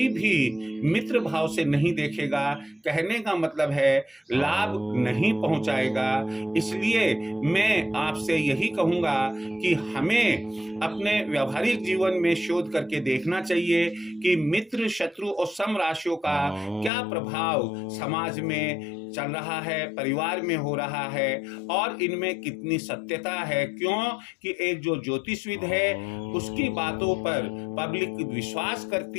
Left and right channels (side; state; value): right; drops out; at 16.9 s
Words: भी मित्र भाव से नहीं देखेगा। कहने का मतलब है लाभ नहीं पहुंचाएगा। इसलिए मैं आपसे यही कहूंगा कि हमें अपने व्यावहारिक जीवन में शोध करके देखना चाहिए कि मित्र, शत्रु और सम राशियों का क्या प्रभाव समाज में चल रहा है, परिवार में हो रहा है और इनमें कितनी सत्यता है। क्यों कि एक जो ज्योतिषविद है उसकी बातों पर पब्लिक विश्वास